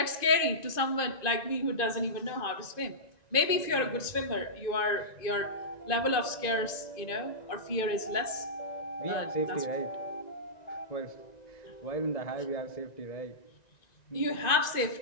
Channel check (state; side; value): late; right; 1.9 ms